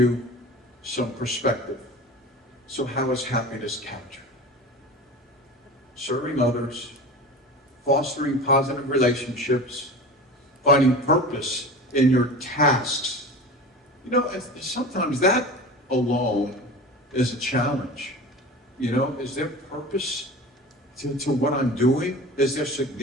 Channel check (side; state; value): both; normal; correlation 0.34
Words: some perspective. So how is happiness captured? Serving others, fostering positive relationships, finding purpose in your tasks. Sometimes that alone is a challenge. Is there purpose to what I'm doing? Is there